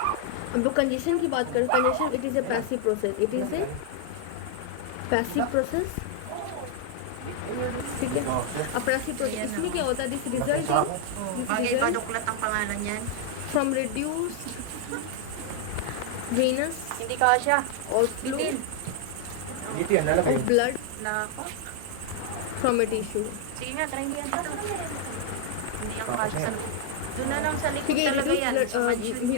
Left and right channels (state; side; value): different; both; correlation 0.00